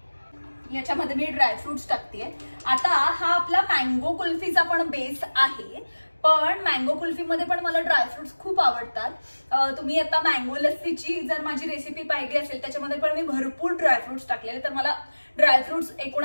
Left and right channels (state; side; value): inverted; both; correlation -1.00